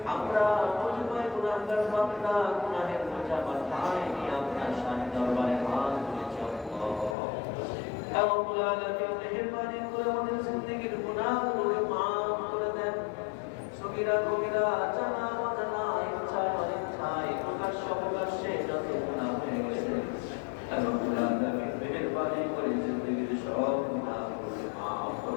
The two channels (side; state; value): right; drops out; at 7.2 s